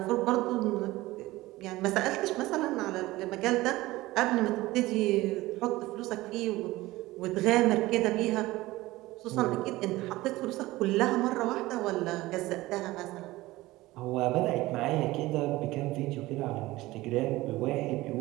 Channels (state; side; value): quieter; left; 18.6 dB